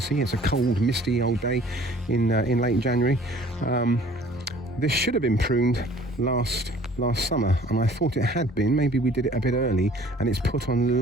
it's a cold, misty old day in late January. This should have been pruned last summer, and I thought it had been. Maybe we did it a bit early, and it's put on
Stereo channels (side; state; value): both; normal; correlation 0.52